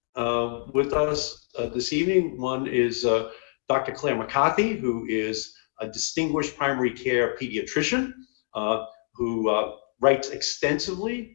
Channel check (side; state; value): right; silent; digital silence